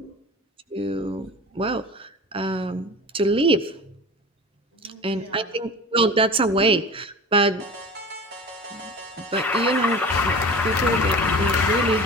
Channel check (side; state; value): both; normal; correlation 0.36